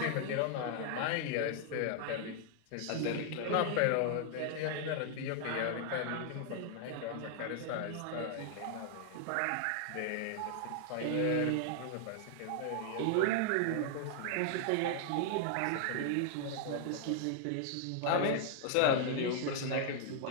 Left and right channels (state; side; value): different; both; correlation 0.00